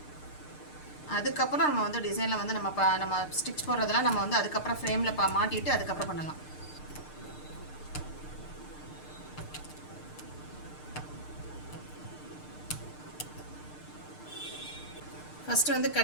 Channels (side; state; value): right; late; 6.6 ms